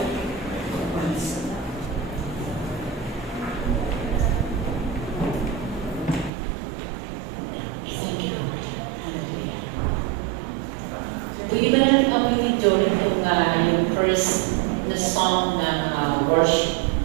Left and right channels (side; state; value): left; drops out; at 6.3 s